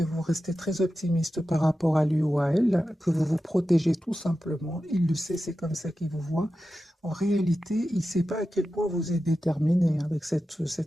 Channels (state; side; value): normal; both; correlation 0.92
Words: vous restez très optimiste par rapport à lui ou à elle, que vous vous protégez tout simplement. Il le sait, c'est comme ça qu'il vous voit. En réalité, il ne sait pas à quel point vous êtes déterminé avec